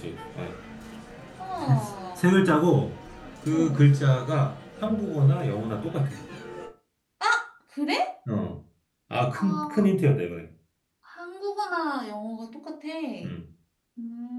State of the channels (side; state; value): both; identical; correlation 1.00